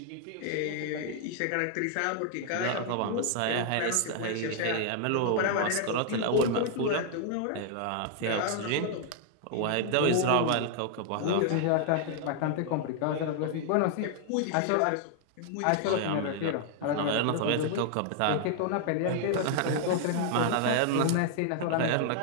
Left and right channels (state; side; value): different; both; correlation 0.00